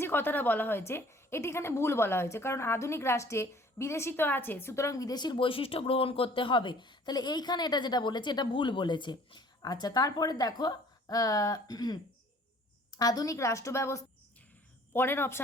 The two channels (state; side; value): normal; both; correlation 0.53